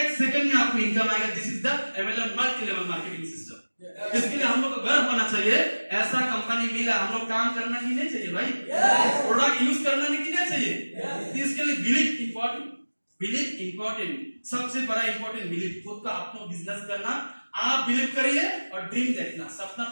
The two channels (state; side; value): inverted; both; correlation -1.00